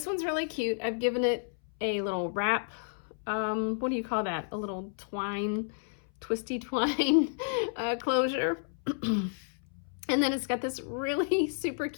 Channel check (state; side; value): silent; right; 57 dB below the other